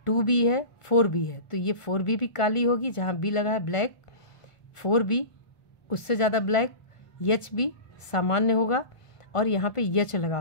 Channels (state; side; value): late; right; 1.4 ms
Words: 2B है, 4B है, तो ये 4B भी काली होगी। जहाँ बी लगा है ब्लैक, 4B उससे ज़्यादा ब्लैक, HB सामान्य होगा, और यहाँ पे यच लगा